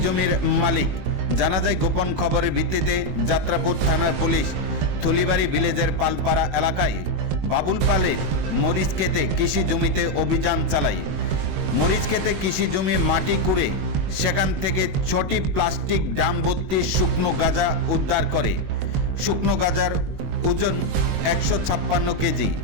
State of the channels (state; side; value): late; left; 21 ms